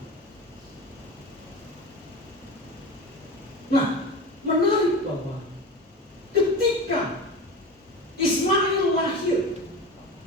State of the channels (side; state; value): both; normal; correlation 0.29